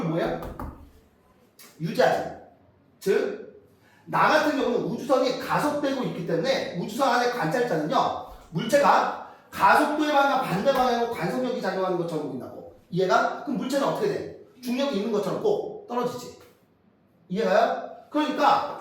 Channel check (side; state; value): both; identical; correlation 1.00